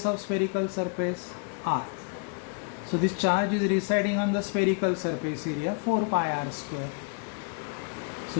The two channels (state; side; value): quieter; right; 35.1 dB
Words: of spherical surface, r। So this charge is residing on the spherical surface area 4πr²। So